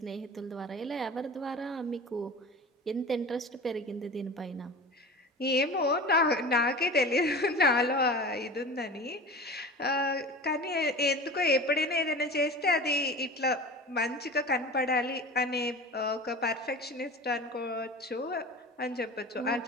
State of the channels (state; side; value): normal; both; correlation 0.34